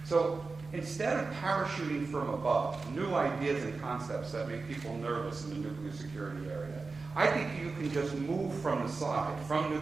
So instead of parachuting from above new ideas and concepts that make people nervous in the nuclear security area, I think you can just move from the side, from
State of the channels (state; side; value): quieter; left; 4.1 dB